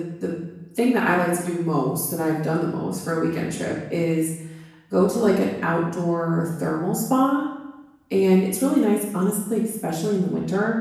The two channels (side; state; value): both; identical; correlation 1.00